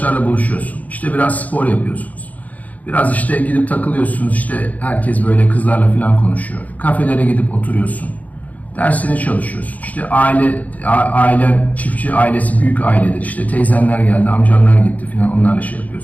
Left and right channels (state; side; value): late; right; 0.075 ms